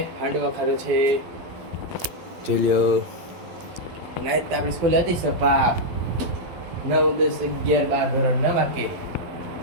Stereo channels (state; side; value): late; left; 12 ms